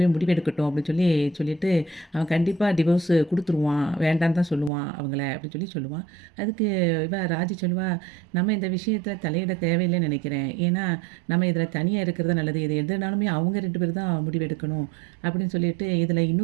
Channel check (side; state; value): left; drops out; at 4.7 s